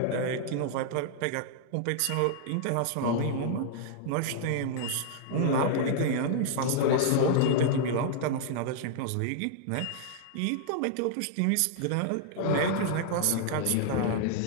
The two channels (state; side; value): different; both; correlation -0.01